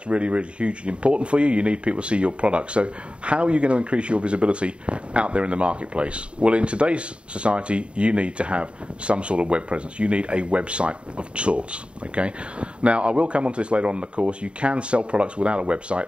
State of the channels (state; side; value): late; left; 0.057 ms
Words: really, really hugely important for you. You need people to see your product. So how are you going to increase your visibility out there in the marketplace? Well, in today's society, you need to have some sort of web presence. You need a website of sorts. Okay. Now, I will come on to this later on in the course. You can sell products without a